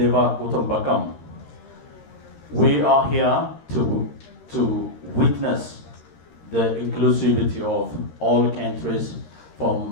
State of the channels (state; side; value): late; right; 13 ms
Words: Kutumbakam, we are here to witness the inclusivity of all countries